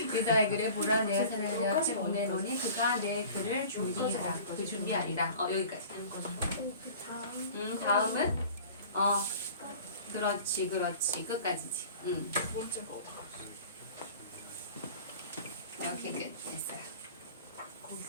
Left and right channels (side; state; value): both; inverted; correlation -0.43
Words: 이사야 그래 보라 내가 사람을 내 앞에 보내노니 그가 내 글을 준비하라. 그 준비하리라. 여기까지. 그 다음. 다음은 그렇지 끝까지지. 오케이 끝 됐어요.